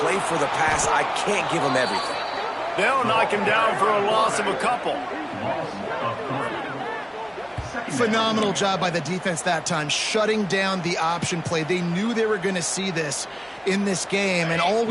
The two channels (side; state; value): both; identical; correlation 1.00